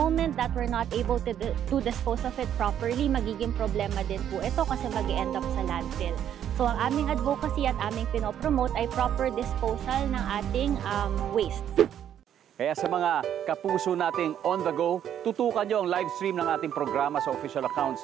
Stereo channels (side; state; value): left; quieter; 10.0 dB